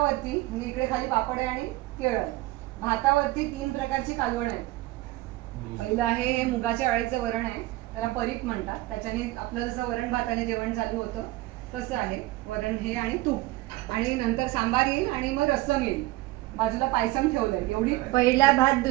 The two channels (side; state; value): left; quieter; 18.7 dB